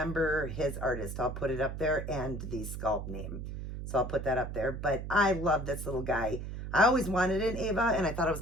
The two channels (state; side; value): noise; right; hum, 7 dB below the sound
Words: his artist. I'll put it up there and the sculpt name. So I'll put that up there, but I love this little guy. I always wanted an Ava, and I thought I was